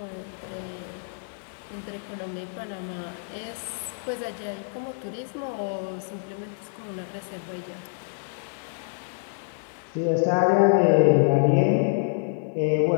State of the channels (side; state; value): right; silent; digital silence